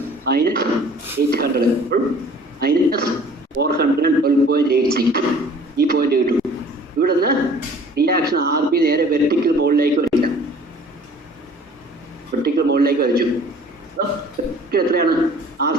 minus 800 minus 412.86. ഈ പോയിന്റ് കിട്ടും. ഇവിടെ നിന്ന് റിയാക്ഷൻ RB നേരെ വെർട്ടിക്കൽ മോളിലേക്ക് വരില്ല. വെർട്ടിക്കൽ മോളിലേക്ക് വരച്ചു. എത്രയാണ്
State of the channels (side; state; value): both; normal; correlation 0.51